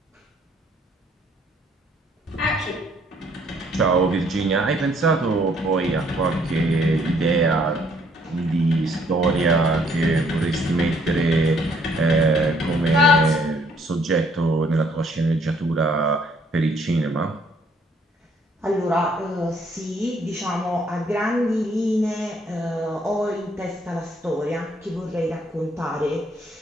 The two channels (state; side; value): normal; both; correlation 0.65